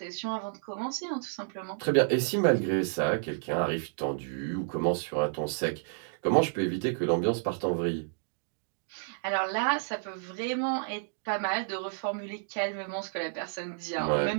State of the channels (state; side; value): silent; left; digital silence